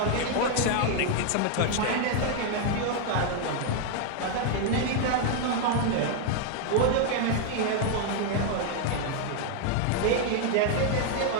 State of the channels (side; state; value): both; different; correlation 0.00